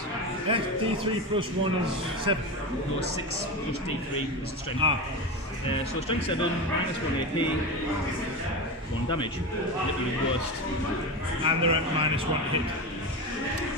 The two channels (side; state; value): both; normal; correlation 0.21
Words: D3 plus 1 is 7. no 6 plus D3 is the strength. So strength 7, -1 AP, 1 damage. Literally the worst. And they're at -1 hit.